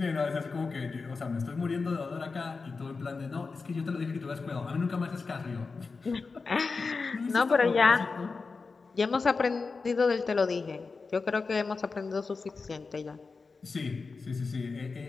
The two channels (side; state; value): right; quieter; 4.4 dB